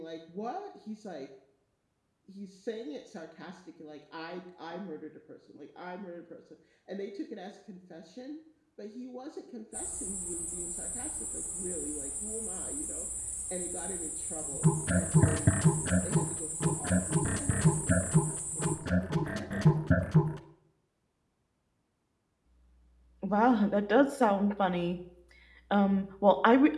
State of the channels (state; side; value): identical; both; correlation 1.00